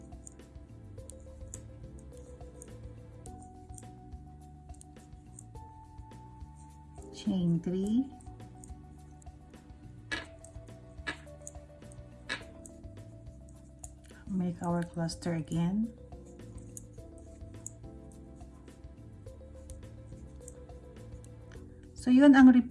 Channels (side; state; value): both; identical; correlation 1.00